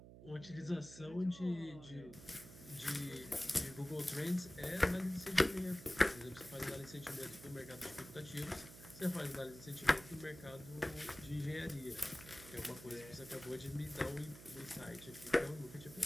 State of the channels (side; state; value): right; noise; hum, 16 dB below the sound